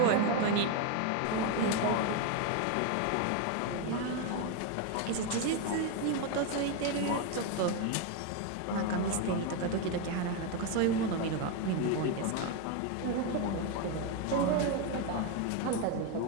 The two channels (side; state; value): both; different; correlation 0.02